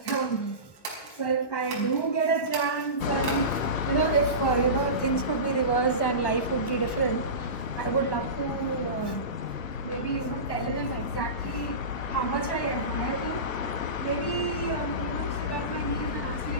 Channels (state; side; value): late; right; 1.1 ms